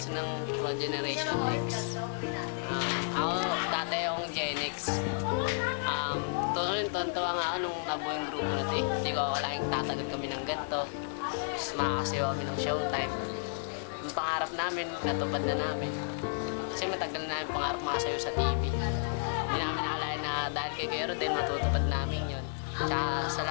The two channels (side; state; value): right; silent; 56 dB below the other